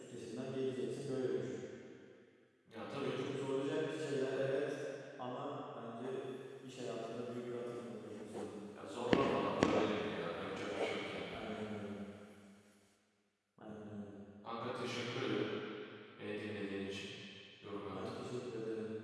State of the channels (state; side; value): identical; both; correlation 1.00